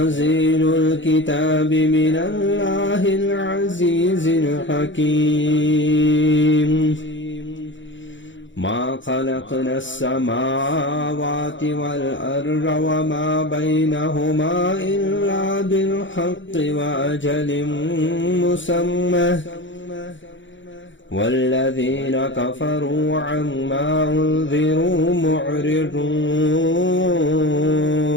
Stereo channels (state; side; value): late; right; 0.55 ms